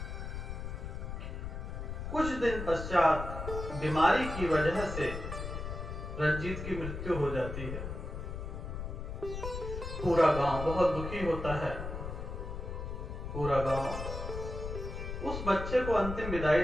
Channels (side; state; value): left; noise; rumble, 6 dB below the sound